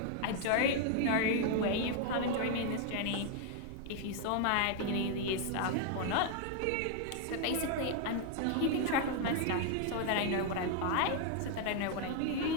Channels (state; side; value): different; both; correlation 0.00